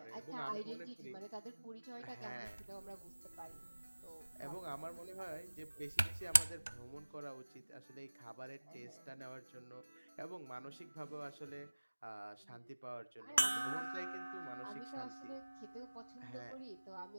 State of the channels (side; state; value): both; inverted; correlation -1.00